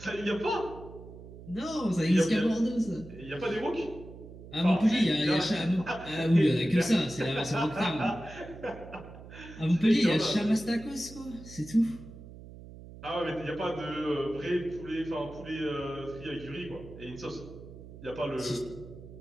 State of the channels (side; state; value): right; noise; hum, 16 dB below the sound